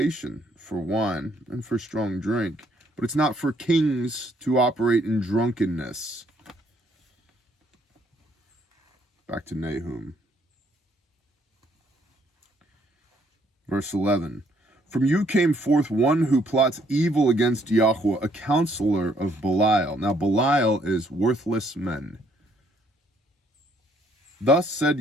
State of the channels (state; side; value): normal; both; correlation 0.67